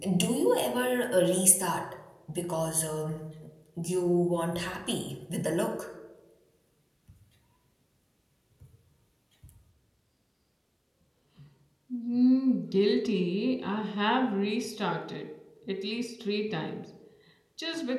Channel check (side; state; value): both; identical; correlation 1.00